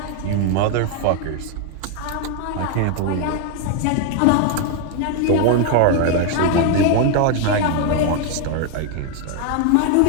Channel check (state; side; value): different; both; correlation 0.00